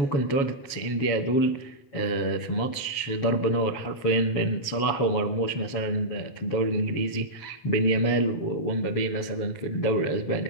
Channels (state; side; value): late; right; 7.2 ms